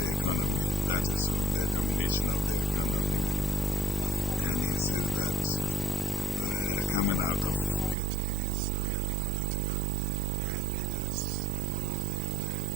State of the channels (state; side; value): drops out; left; at 8.0 s